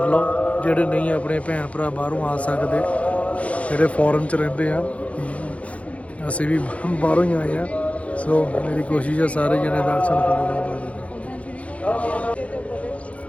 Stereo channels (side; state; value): right; late; 0.065 ms